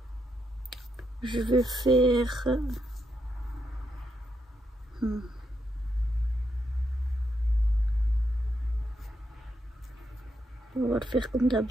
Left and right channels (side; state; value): both; normal; correlation 0.81